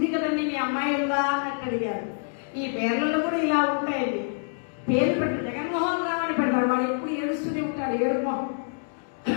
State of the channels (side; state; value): right; silent; digital silence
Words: కదండి, మీ అమ్మాయి ఉందా అని అడిగాడు. ఈ పేర్లలో కూడా ఇలా ఉంటాయండి. పేరు పెట్టి జగన్మోహన్ రావు అని పెడతాడు. వాడు ఎప్పుడు ఏడుస్తూనే ఉంటాడు, ఏడుపు మొహం.